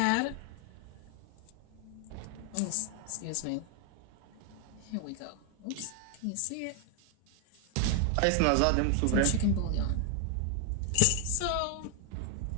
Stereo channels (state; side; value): different; both; correlation 0.00